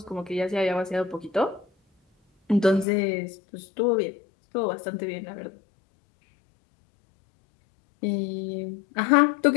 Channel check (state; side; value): drops out; right; at 2.9 s